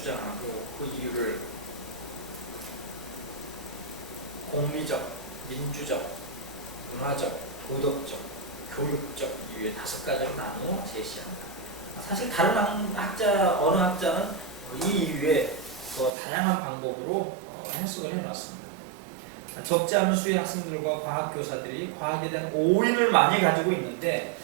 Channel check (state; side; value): drops out; left; at 16.1 s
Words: 그 이유를 공리적, 민주적, 문화적, 도덕적, 교육적 이유의 5가지로 나누어 제시한다. 사실 다른 어느 학자는 이 이유에 더 다양한 방법으로 해석을 해놨습니다. 적지 않은 수의 학생들과 과학교사들이 과학에 대한 오인을 많이 가지고 있는데